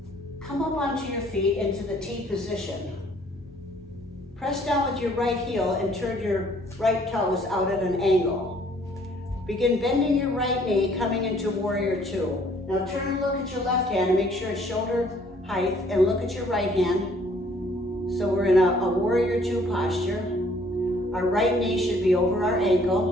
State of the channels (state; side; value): normal; both; correlation 0.60